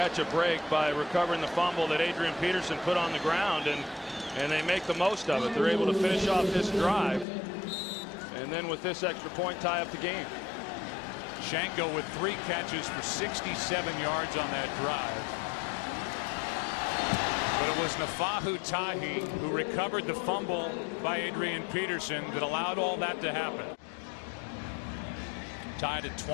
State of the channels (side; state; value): right; drops out; at 7.2 s